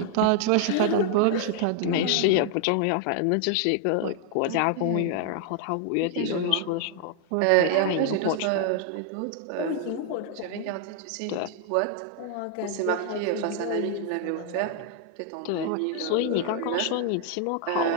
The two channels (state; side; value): different; both; correlation 0.00